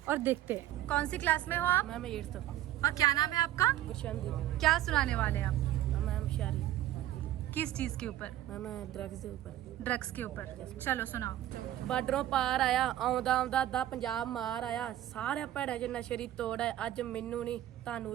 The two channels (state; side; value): quieter; left; 13.5 dB